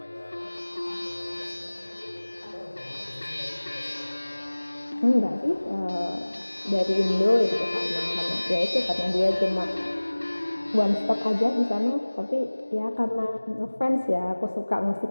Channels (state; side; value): inverted; both; correlation -1.00